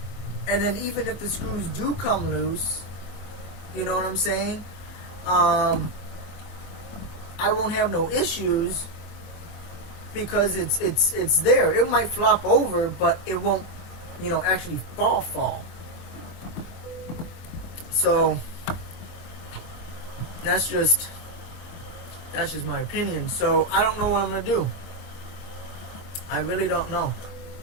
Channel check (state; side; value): late; right; 24 ms